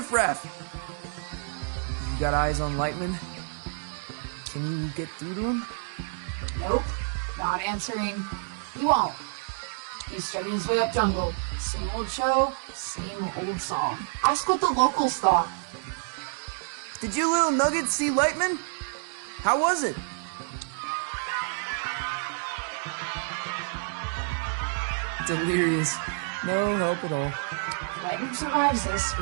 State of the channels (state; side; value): silent; left; digital silence